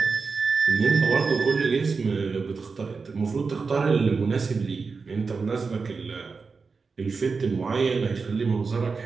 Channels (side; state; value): left; quieter; 4.7 dB